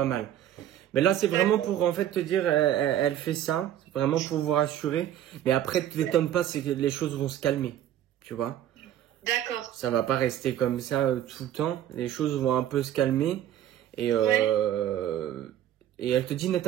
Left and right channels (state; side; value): quieter; left; 11.4 dB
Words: mal. Mais là, c'est vraiment pour en fait te dire, elle fait ça, c'est vraiment pour vous rassurer. Mais après, ne t'étonne pas, c'est que les choses vont se calmer, tu vois. D'accord. Ça va pas rester comme ça tout le temps. Les choses vont un peu se calmer et Et elle te dit, ne